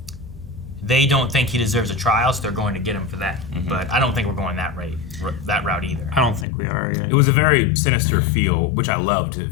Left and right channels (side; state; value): right; drops out; at 6.5 s